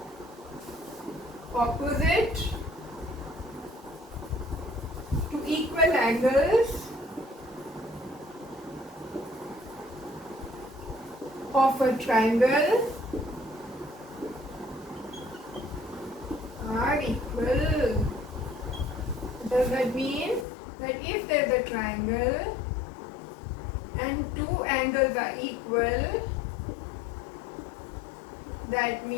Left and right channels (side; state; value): right; drops out; at 20.5 s